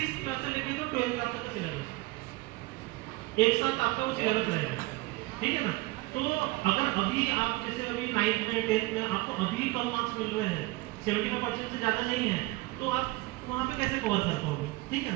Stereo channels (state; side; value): quieter; left; 21.6 dB